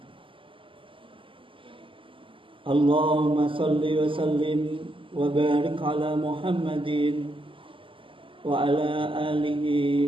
Allahumma salli wa sallim wa barik ala Muhammadin wa ala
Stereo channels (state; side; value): late; left; 0.25 ms